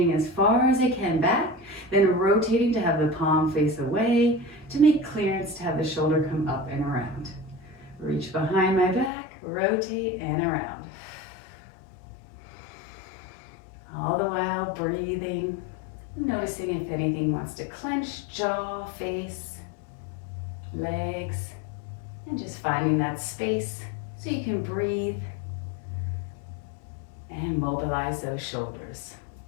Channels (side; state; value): right; drops out; at 9.1 s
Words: as far as I can back, then rotating to have the palm face away, to make clearance to have the shoulder come up and around. Reach behind my back, rotate and around. All the while breathing, noticing if anything wants to clench, jaw, face, legs, and just finding that space so you can breathe and mobilize those shoulders.